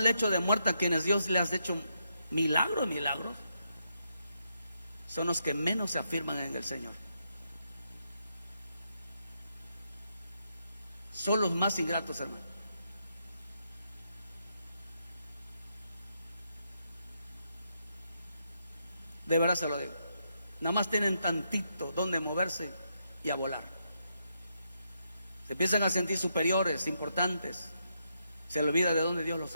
lecho de muerte, a quienes Dios les ha hecho milagros, son los que menos se afirman en el Señor. Son los más ingratos, hermano. De verdad se lo digo. Nada más tienen tantito donde moverse y a volar. Se empiezan a sentir superiores, importantes. Se le olvida de dónde Dios los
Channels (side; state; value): both; inverted; correlation -0.81